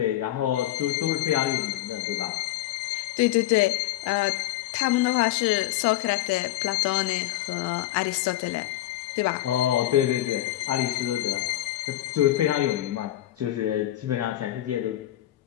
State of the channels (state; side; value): quieter; right; 14.6 dB